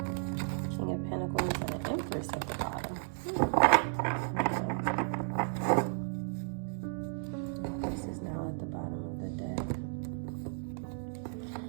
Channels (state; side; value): silent; left; digital silence